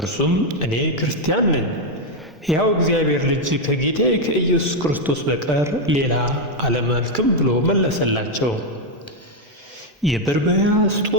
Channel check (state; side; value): normal; both; correlation 0.02